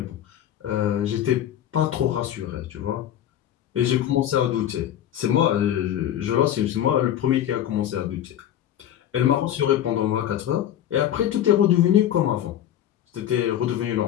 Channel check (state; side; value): quieter; right; 11.1 dB